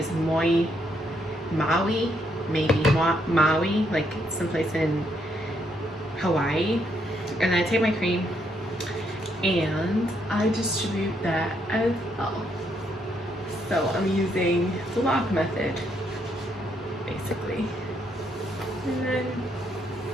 Maui, maybe Maui, like someplace in Hawaii. And then I take my cream and I distribute that as well. So I'm using the lock method, basically. And then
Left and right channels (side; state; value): both; normal; correlation 0.74